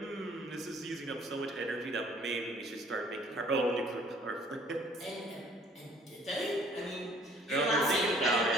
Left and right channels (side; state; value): both; normal; correlation 0.57